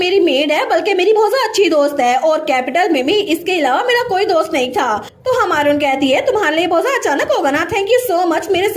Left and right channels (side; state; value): both; identical; correlation 1.00